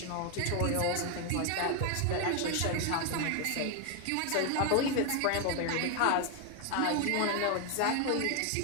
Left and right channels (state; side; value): different; both; correlation 0.01